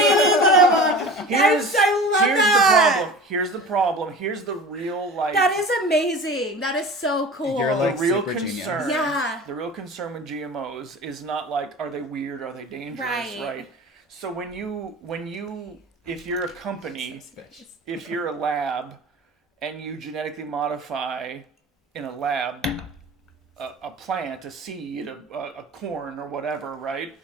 this anymore. I love here's that. the problem. Here's the problem. Here's the real like. That is amazing. That is so cool. You're like the real super concern. genius. Yeah. The real concern with GMOs is not like, are they weird? Are they dangerous? Right. So if you're a company, Suspicious. if you're a lab, and you genetically modify in a lab a plant, a seed, a corn or whatever, right?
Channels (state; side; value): normal; both; correlation 0.37